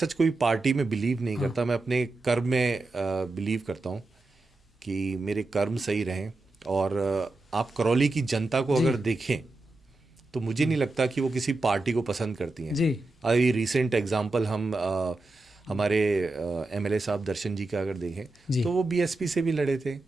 सच कोई पार्टी में बिलीव नहीं करता। मैं अपने कर्म में बिलीव करता हूँ कि मेरे कर्म सही रहें। और आप करौली की जनता को अगर देखें तो मुझे नहीं लगता कि वो किसी पार्टी को पसंद करती हैं। अभी रिसेंट एग्जांपल हम हमारे MLA साहब दर्शन जी का अगर देखें तो वो BSP से भी लड़े थे,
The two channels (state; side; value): quieter; left; 3.0 dB